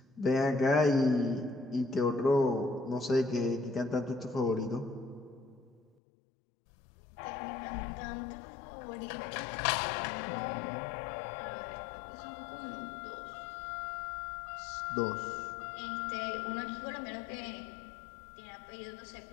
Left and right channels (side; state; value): right; drops out; at 5.8 s